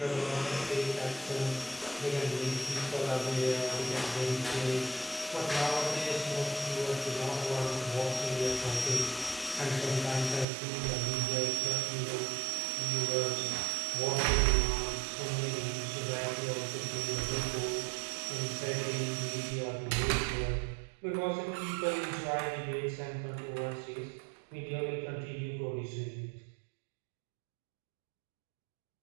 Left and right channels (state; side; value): drops out; left; at 10.5 s